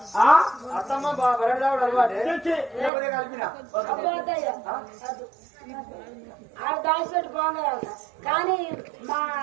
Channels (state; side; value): drops out; left; at 2.9 s